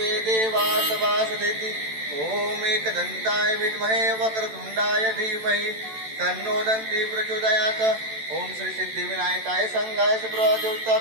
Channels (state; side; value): late; left; 14 ms